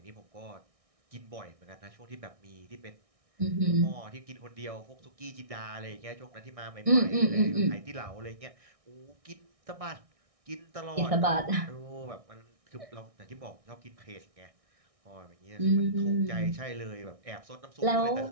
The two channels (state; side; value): late; left; 1.6 ms